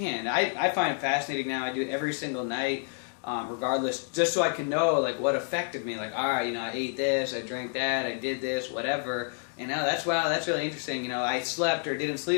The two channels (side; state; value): right; silent; 56 dB below the other